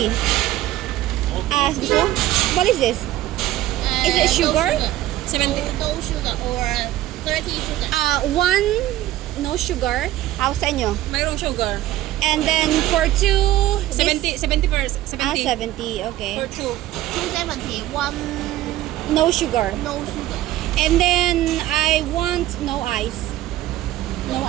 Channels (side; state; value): left; quieter; 14.8 dB